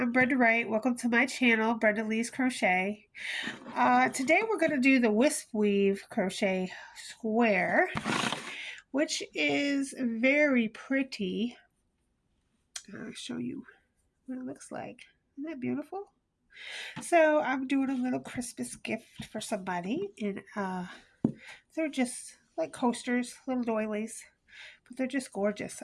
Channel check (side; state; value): both; identical; correlation 1.00